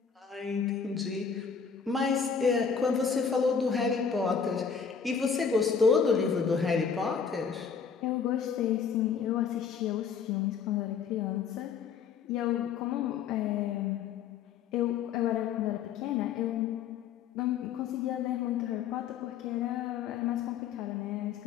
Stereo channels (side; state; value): right; quieter; 6.5 dB